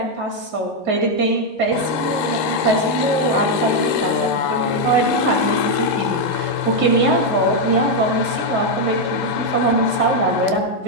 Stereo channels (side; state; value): both; normal; correlation 0.01